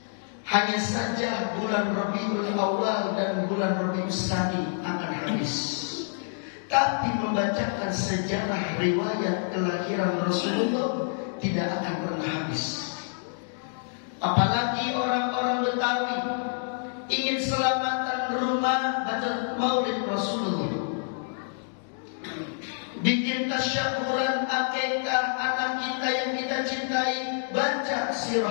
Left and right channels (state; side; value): silent; right; digital silence